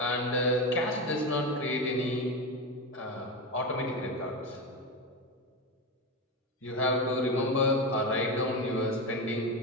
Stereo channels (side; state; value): both; normal; correlation 0.17